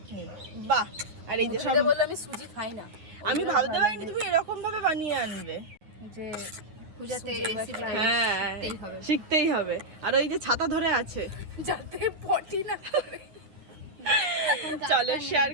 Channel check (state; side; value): late; left; 9.6 ms